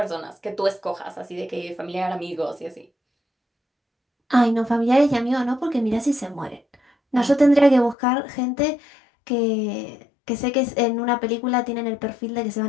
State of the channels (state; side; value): drops out; right; at 8.0 s